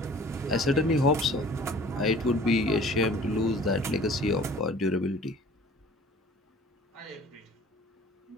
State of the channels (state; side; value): normal; both; correlation 0.48